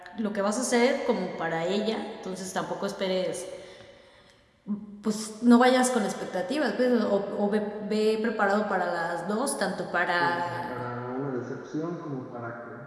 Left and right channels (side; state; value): both; identical; correlation 1.00